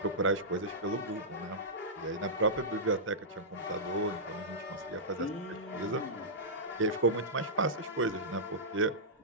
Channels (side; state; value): both; normal; correlation -0.14